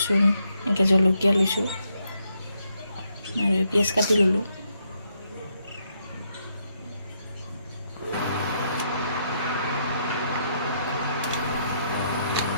এনেকৈ জলকীয়া লৈছোঁ আৰু পিঁয়াজ কাটি ল'লোঁ।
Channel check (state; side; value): inverted; both; correlation -0.77